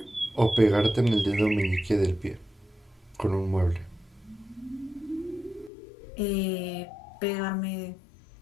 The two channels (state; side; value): drops out; right; at 5.7 s